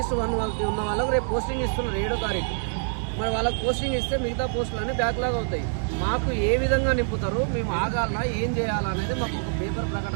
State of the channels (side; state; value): left; silent; 56 dB below the other